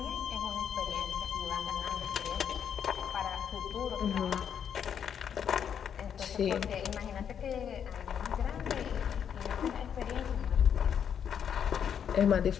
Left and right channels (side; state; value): right; quieter; 8.2 dB